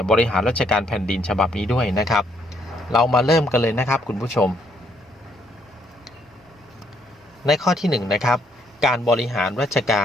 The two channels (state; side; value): normal; both; correlation 0.71